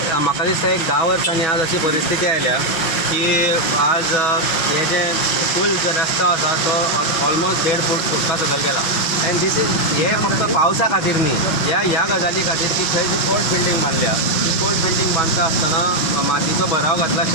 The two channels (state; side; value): late; right; 6.2 ms